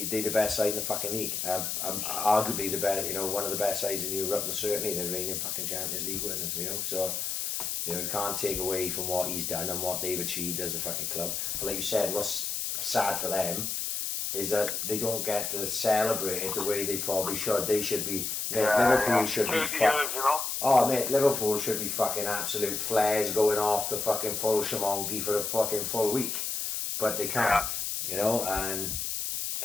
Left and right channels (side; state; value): left; noise; hiss, 2 dB below the sound